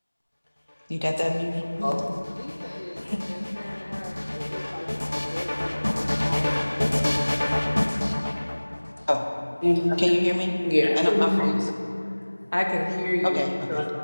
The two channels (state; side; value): inverted; both; correlation -1.00